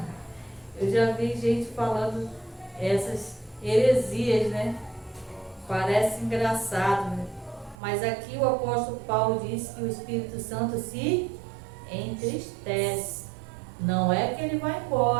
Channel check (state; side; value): drops out; left; at 7.8 s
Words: Eu já vi gente falando essas heresias, né? Parece engraçado, né? Mas aqui o apóstolo Paulo diz que o Espírito Santo se entristece. Não é que ele vai